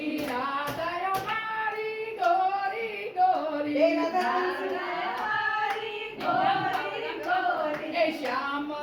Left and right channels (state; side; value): identical; both; correlation 1.00